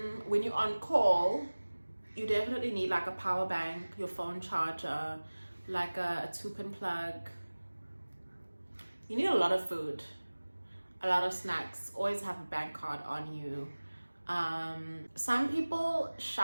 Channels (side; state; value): both; inverted; correlation -1.00